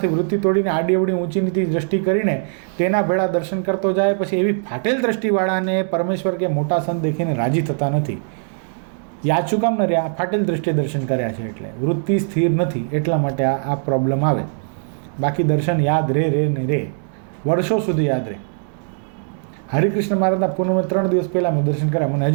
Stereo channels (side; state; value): left; silent; 63 dB below the other